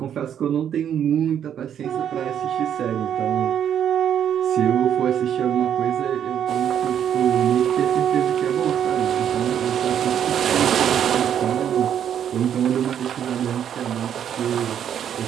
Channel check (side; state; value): left; quieter; 9.3 dB